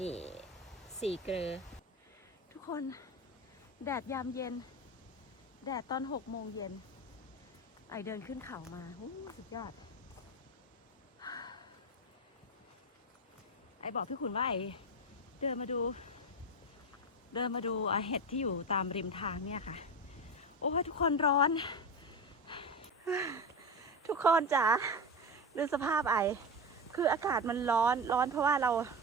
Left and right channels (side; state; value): both; normal; correlation 0.19